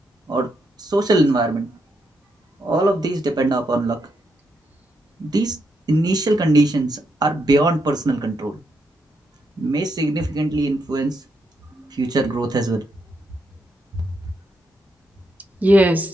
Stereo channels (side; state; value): both; normal; correlation 0.80